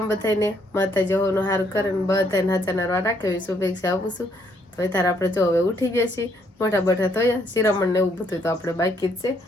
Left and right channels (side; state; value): both; normal; correlation 0.70